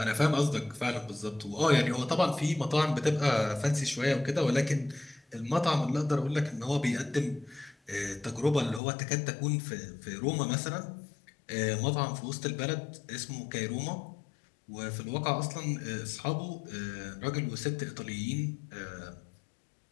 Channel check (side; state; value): right; drops out; at 8.8 s